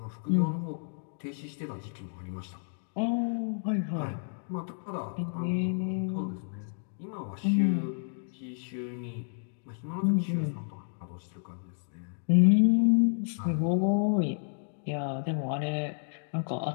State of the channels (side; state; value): right; silent; digital silence